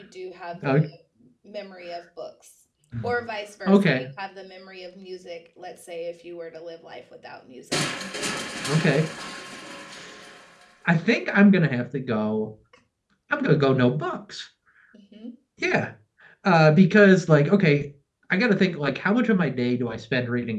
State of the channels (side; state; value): both; identical; correlation 1.00